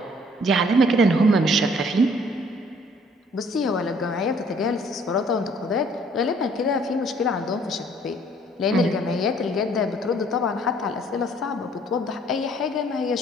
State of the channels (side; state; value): both; normal; correlation 0.59